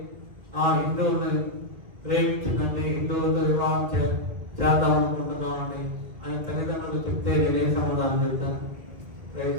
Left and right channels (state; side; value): late; left; 2.1 ms